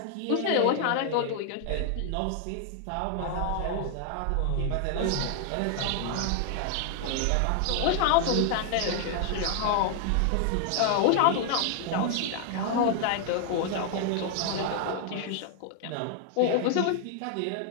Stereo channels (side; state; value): both; different; correlation 0.00